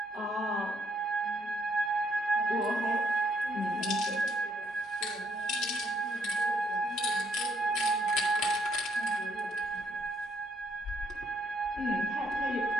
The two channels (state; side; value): normal; both; correlation 0.70